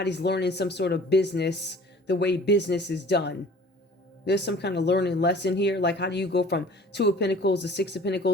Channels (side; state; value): both; normal; correlation 0.48